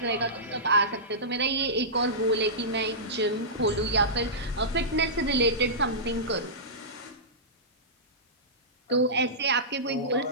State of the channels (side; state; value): both; normal; correlation -0.17